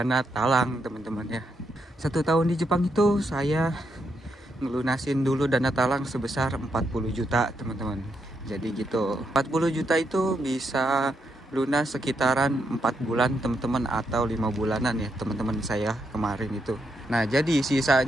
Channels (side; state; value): both; normal; correlation 0.80